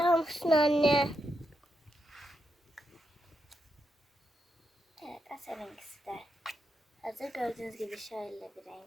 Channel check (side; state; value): both; normal; correlation 0.83